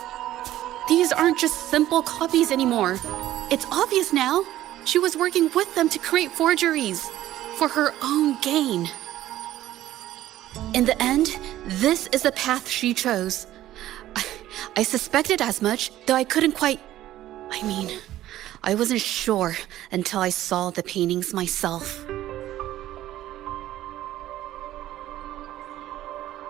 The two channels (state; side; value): quieter; left; 13.9 dB